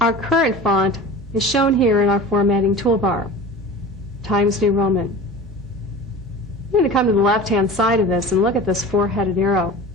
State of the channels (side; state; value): both; normal; correlation 0.35